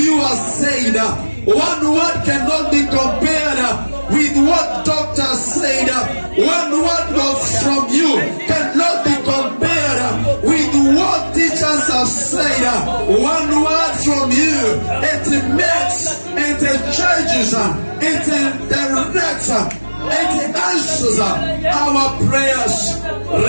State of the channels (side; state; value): both; inverted; correlation -1.00